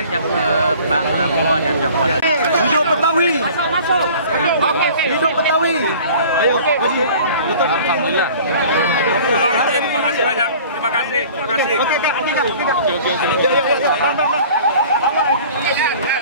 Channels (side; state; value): both; inverted; correlation -0.46